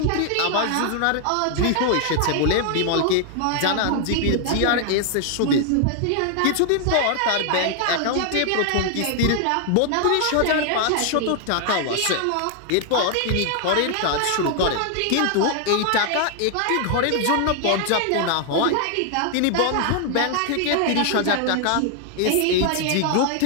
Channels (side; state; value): both; different; correlation 0.00